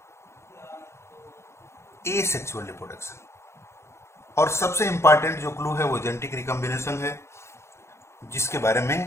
asexual reproduction. और सबसे इंपॉर्टेंट जो क्लू है वो जेनेटिक रिकॉम्बिनेशन है, जिसके बारे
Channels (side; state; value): right; late; 0.13 ms